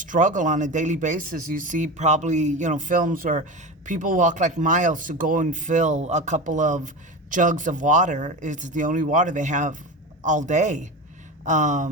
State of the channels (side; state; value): both; normal; correlation 0.25